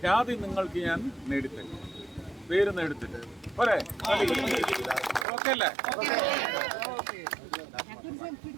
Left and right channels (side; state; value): left; drops out; at 5.2 s